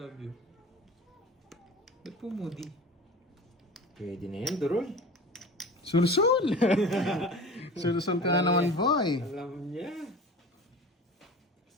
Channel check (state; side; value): normal; both; correlation 0.37